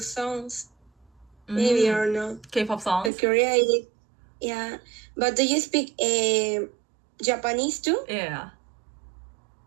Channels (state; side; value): drops out; left; at 3.1 s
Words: maybe or not. K-pop But songs? Korea, yeah. But do you speak Japanese too? Yeah.